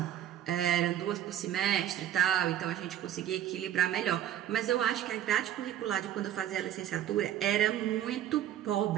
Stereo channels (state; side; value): quieter; left; 11.5 dB